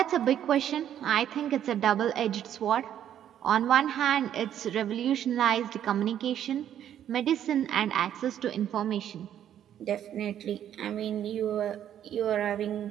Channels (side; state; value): left; quieter; 10.4 dB